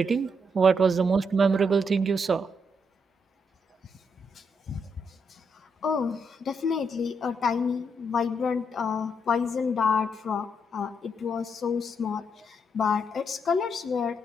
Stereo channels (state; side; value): normal; both; correlation 0.78